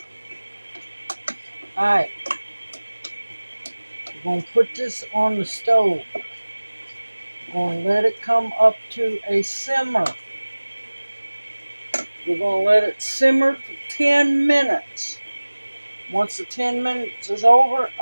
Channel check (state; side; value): inverted; both; correlation -1.00